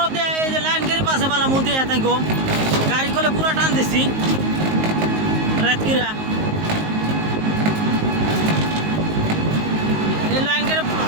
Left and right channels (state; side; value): late; left; 19 ms